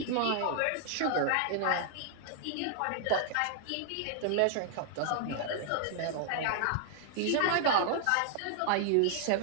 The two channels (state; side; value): different; both; correlation 0.00